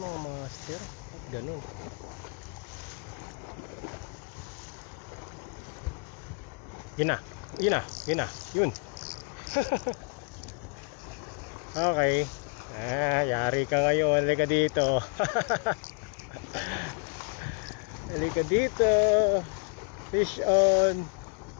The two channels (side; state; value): right; quieter; 32.5 dB